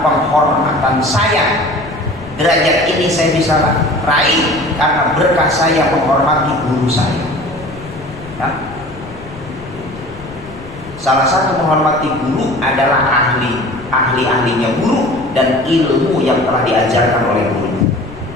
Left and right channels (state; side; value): noise; left; rumble, 17 dB below the sound